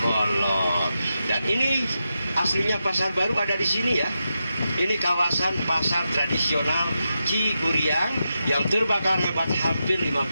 Dan ini aslinya Pasar Baru ada di sini ya. Ini kawasan pasar tradisional Ciguriang yang terbakar hebat hampir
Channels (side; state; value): both; inverted; correlation -0.88